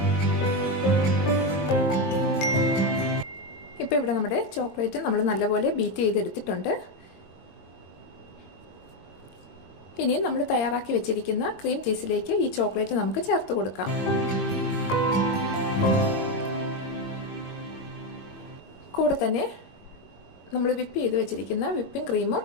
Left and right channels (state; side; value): late; right; 21 ms